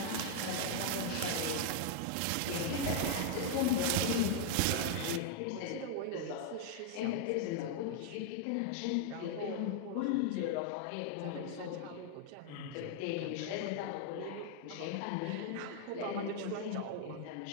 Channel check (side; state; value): both; different; correlation 0.00